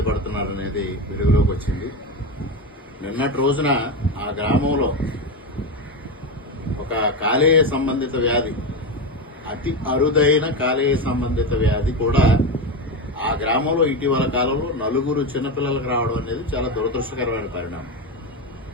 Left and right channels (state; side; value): normal; both; correlation 0.16